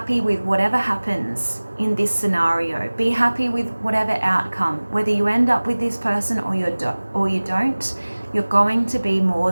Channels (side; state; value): both; inverted; correlation -1.00